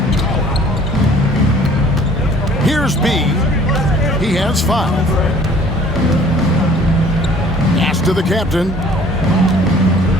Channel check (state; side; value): normal; both; correlation 0.53